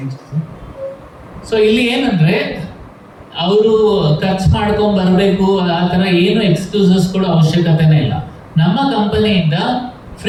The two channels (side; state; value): both; identical; correlation 1.00